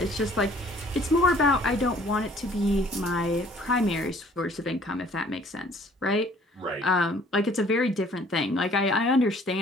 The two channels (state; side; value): normal; both; correlation 0.56